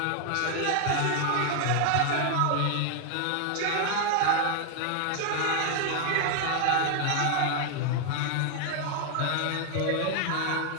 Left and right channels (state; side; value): different; both; correlation 0.00